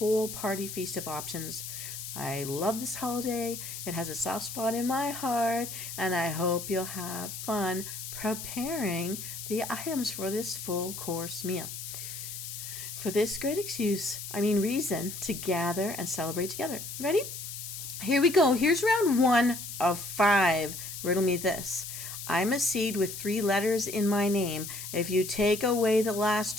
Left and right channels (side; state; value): left; noise; hiss, 8 dB below the sound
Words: party feast of options. I love this holiday. It has a soft spot in my heart. And I hope you'll have fun preparing the items for this full course meal. For this great reason to gather and celebrate together. Ready? Here we go. Here's round 1 of 5. Riddle me this. I'm a seed with 3 letters in my name. If you take away the last